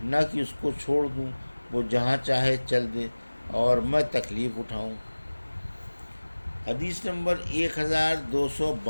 نہ کہ اس کو چھوڑ دوں، وہ جہاں چاہے چل دے اور میں تکلیف اٹھاؤں۔ حدیث نمبر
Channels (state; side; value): inverted; both; correlation -1.00